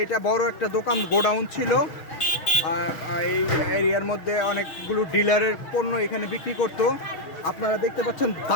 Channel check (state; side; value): late; right; 6.4 ms